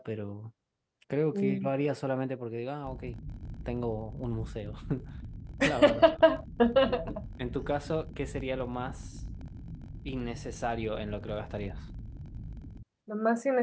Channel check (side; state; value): both; identical; correlation 1.00